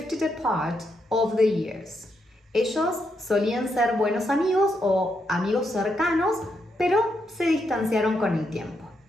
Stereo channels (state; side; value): normal; both; correlation 0.80